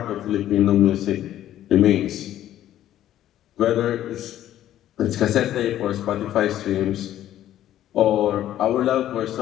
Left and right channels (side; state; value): right; quieter; 12.4 dB